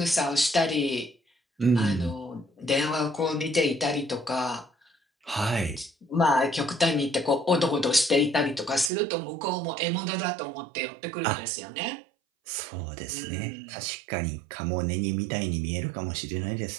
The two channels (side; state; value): left; drops out; at 8.9 s